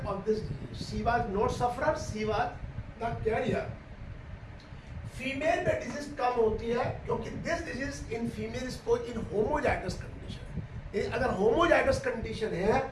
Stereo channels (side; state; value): both; identical; correlation 1.00